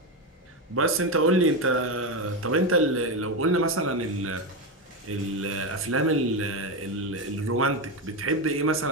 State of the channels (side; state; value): both; normal; correlation 0.13